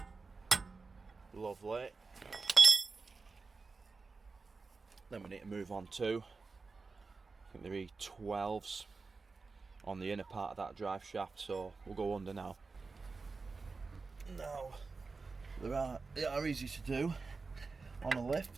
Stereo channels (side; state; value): left; quieter; 4.2 dB